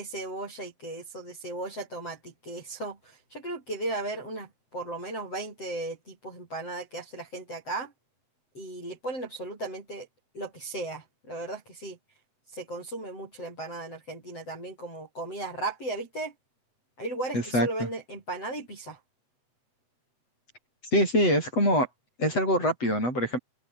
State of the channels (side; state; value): right; late; 7.8 ms